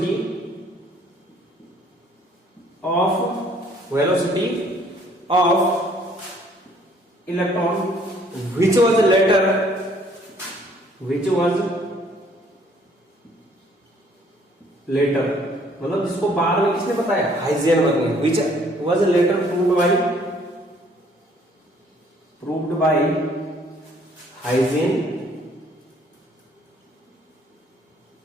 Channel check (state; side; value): normal; both; correlation 0.61